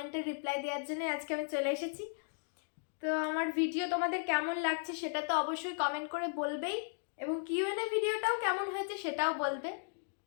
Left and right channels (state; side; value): silent; right; digital silence